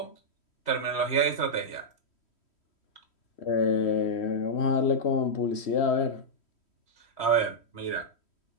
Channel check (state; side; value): late; right; 3.1 ms